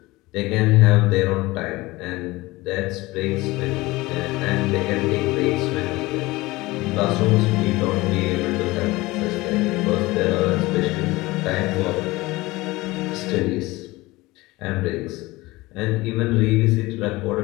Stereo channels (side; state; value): right; quieter; 20.6 dB